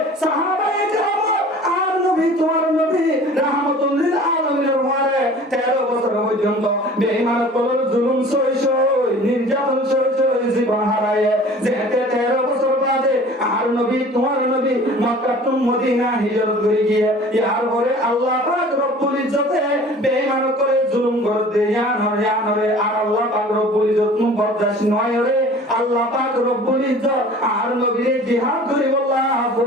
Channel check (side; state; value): both; normal; correlation 0.45